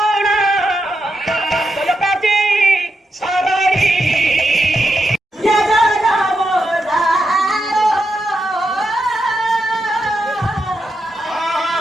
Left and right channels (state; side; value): normal; both; correlation 0.85